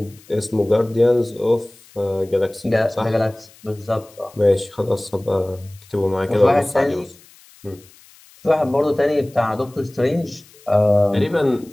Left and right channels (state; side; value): noise; left; hiss, 26 dB below the sound